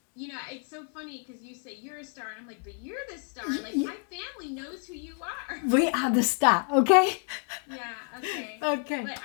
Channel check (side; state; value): right; quieter; 38.0 dB